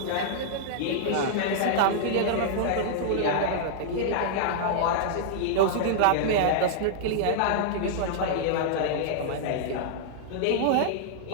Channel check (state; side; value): different; both; correlation -0.02